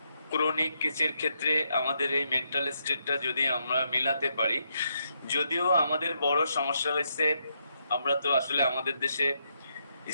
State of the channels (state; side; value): inverted; both; correlation -0.79